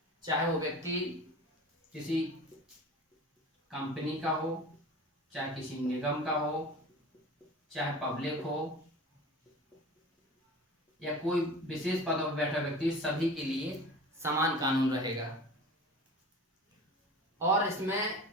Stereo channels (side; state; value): both; normal; correlation 0.37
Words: चाहे वो व्यक्ति किसी कंपनी का हो, चाहे किसी निगम का हो, चाहे पब्लिक हो, या कोई विशेष पद पर बैठा व्यक्ति, सभी के लिए समान कानून रहेगा। और इसमें